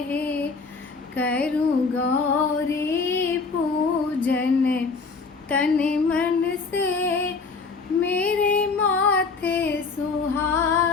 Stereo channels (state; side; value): quieter; right; 4.5 dB